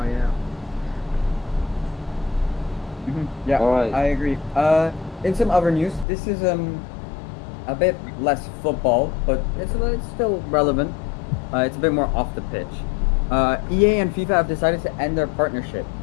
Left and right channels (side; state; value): right; drops out; at 6.1 s